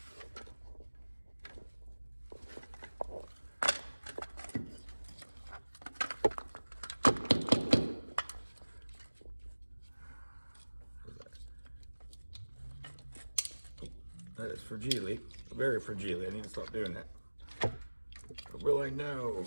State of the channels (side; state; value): both; inverted; correlation -1.00